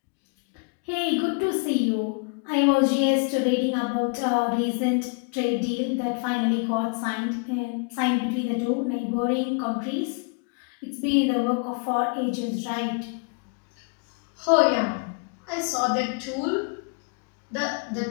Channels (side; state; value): right; quieter; 34.8 dB